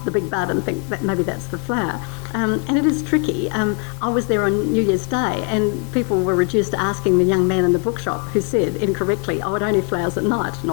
the big bud, and think that maybe that's the flower. And it is tricky. I was there on New Year's Day, and people were reduced to asking the young man in the bookshop who said incorrectly, "Oh, it only flowers at night."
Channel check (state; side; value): quieter; right; 34.2 dB